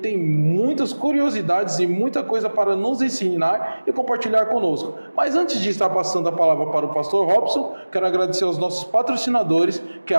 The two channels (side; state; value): both; inverted; correlation -1.00